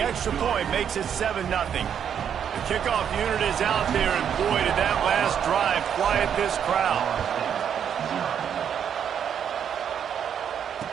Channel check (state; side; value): quieter; left; 8.4 dB